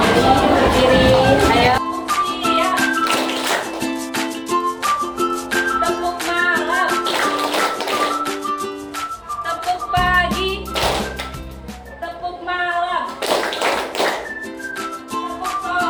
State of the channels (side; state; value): both; identical; correlation 1.00